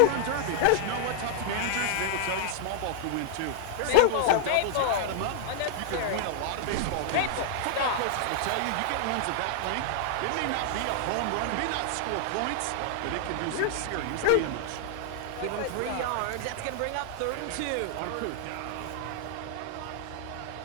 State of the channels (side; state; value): both; different; correlation 0.00